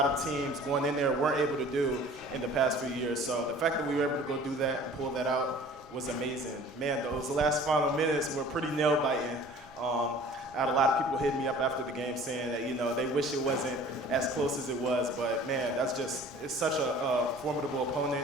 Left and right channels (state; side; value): normal; both; correlation 0.47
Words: of teams going in there weren't able to do in the past few years. So the fact that we were able to go do that and pull that out was amazing. Man, those last final minutes were pretty nail-biting. I had a lot of people hitting me up after the game saying that, they wish it wasn't as close as it was. But, man, it's such a formidable